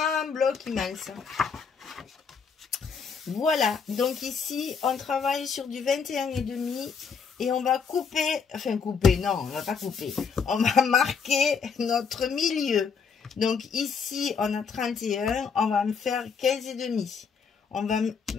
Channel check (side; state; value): right; quieter; 5.9 dB